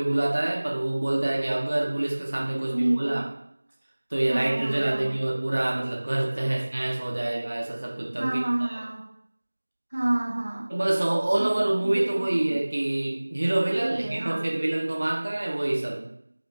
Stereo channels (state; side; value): inverted; both; correlation -1.00